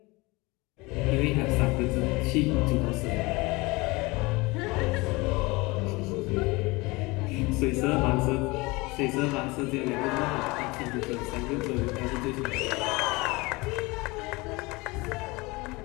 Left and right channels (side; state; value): right; quieter; 23.9 dB